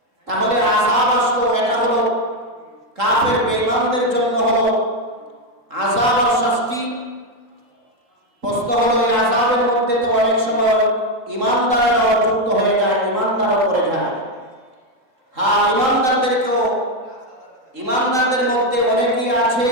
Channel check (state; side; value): late; left; 3.8 ms